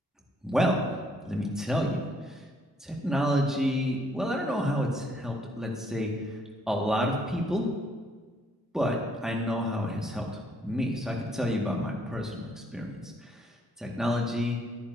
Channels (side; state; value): both; normal; correlation 0.68